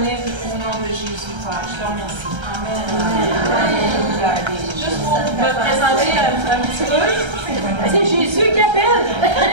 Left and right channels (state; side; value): late; left; 1.3 ms